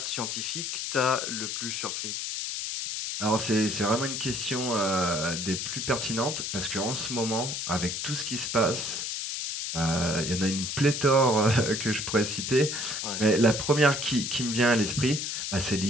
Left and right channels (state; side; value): noise; left; hiss, 3 dB below the sound